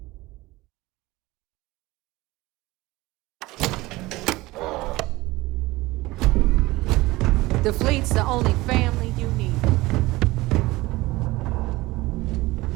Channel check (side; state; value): left; quieter; 19.9 dB